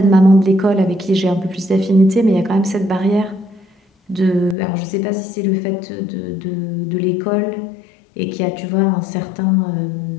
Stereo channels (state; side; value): drops out; right; at 4.5 s